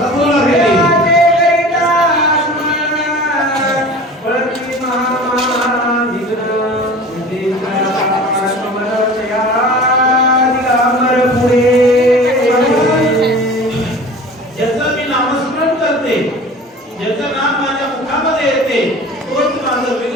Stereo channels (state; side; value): normal; both; correlation 0.40